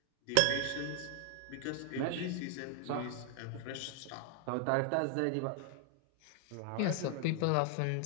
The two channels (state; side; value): different; both; correlation 0.00